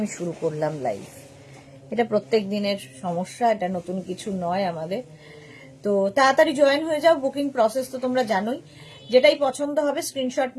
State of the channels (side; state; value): both; identical; correlation 1.00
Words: শুরু করলাম লাইভ। এটা প্রত্যেক দিনের সমস্যা, এটা নতুন কিছু নয় আমাদের। তো তাড়াতাড়ি জয়েন হয়ে যাও। বুকিং প্রসেস তো তোমরা জানোই। যেটাই পছন্দ হবে স্ক্রিনশট